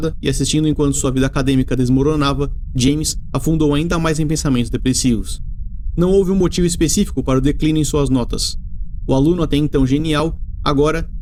e assistindo enquanto sua vida acadêmica desmoronava, James afundou ainda mais em pensamentos depressivos. Não houve um motivo específico para o declínio em suas notas. O aluno até então genial, agora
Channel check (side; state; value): both; identical; correlation 1.00